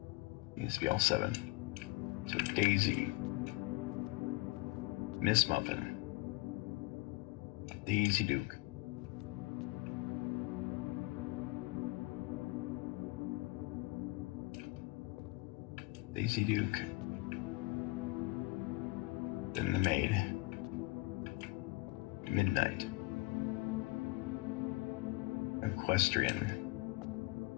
Needs to be all 7. So Daisy. Miss Muffin. Daisy Duke. Daisy Duke. Then the maid. Midnight. Equestrian.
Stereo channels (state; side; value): quieter; right; 21.6 dB